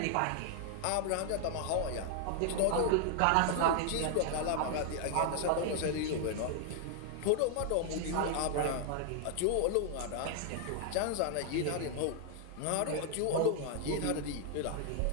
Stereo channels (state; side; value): different; both; correlation 0.00